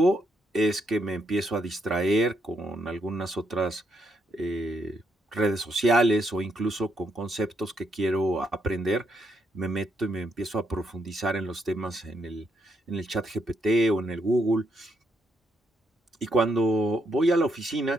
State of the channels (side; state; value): both; normal; correlation 0.76